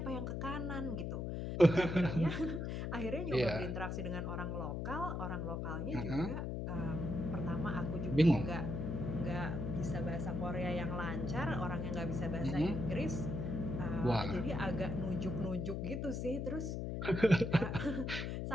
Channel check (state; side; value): noise; left; hum, 3 dB below the sound